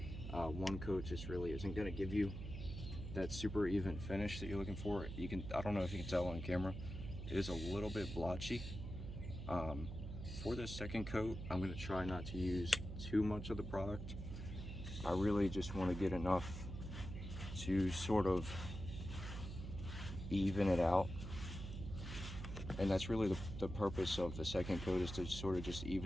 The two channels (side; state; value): right; noise; hum, 7 dB below the sound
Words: One coat just really isn't going to give you that super even finish that you're looking for. I don't know if you can tell on camera, it is a little bit blotchy. For this second coat, I'm going to try not to use too much of the product. I really just want to get enough to sort of even it out. And that's really the purpose of the second coat, is to sort of just